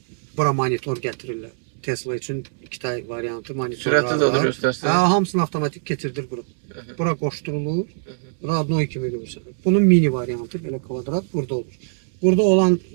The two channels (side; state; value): left; silent; 64 dB below the other